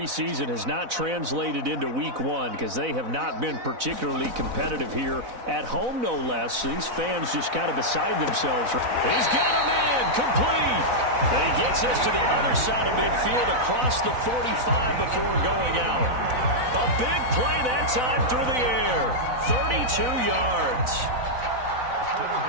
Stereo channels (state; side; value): late; left; 4.0 ms